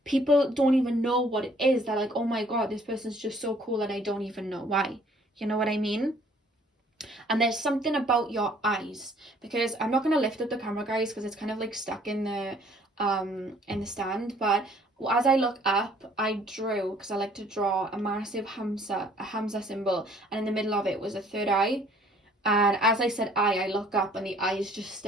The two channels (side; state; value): both; normal; correlation 0.58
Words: People don't even know what it is. They're like, oh my God, this person's just so cool and I don't even know why. You know what I mean? And there's something about your eyes, because I'm not going to lift up the camera, guys, because it's kind of like stuck in the stand. But as I look up, I drew, because I like to draw, a massive Hamza symbol, and in the middle of it was a third eye. And as I said I look up and the eye is just